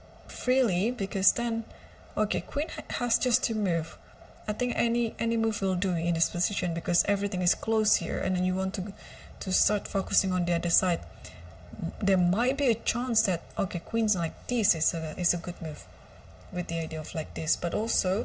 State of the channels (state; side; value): identical; both; correlation 1.00